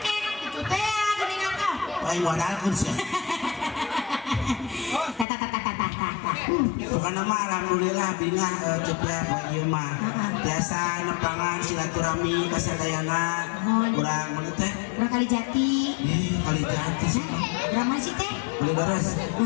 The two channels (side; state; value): right; drops out; at 5.2 s